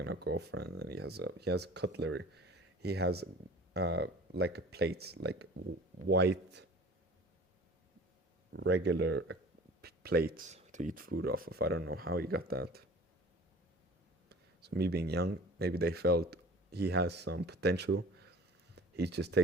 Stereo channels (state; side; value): normal; both; correlation 0.44